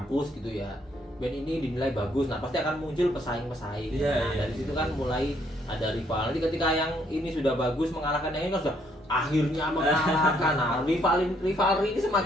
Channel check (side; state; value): both; normal; correlation 0.69